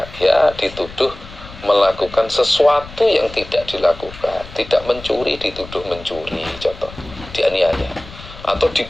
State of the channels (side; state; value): left; noise; rumble, 16 dB below the sound